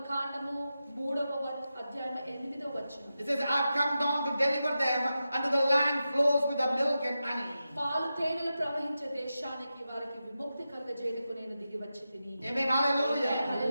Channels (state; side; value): inverted; both; correlation -0.91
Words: 3వ అధ్యాయం 8వ వచనం. it says, I have come down to deliver them unto the land flows with the milk and honey. పాలు తేనెలు ప్రవహించే దేశానికి వారికి విముక్తి కలుగజేయడానికి నేను దిగి వచ్చి తిని. Amen. Hallelujah.